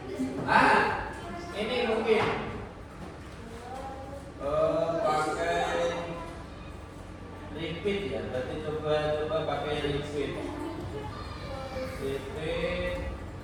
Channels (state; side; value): identical; both; correlation 1.00